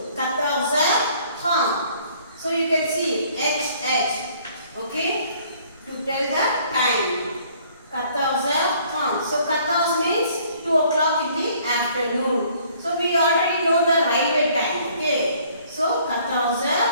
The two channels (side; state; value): both; inverted; correlation -0.59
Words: 14h30. So you can see H. Okay, to tell the time. 14h30. So 14 means 2 o'clock in the afternoon. So we already know the railway time. Okay. So